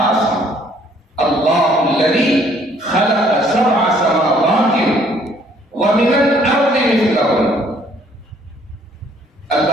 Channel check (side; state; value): both; normal; correlation 0.62